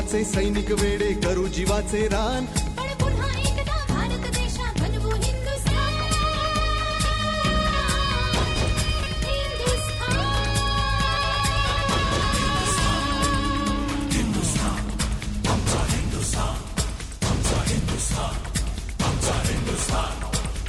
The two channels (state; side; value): identical; both; correlation 1.00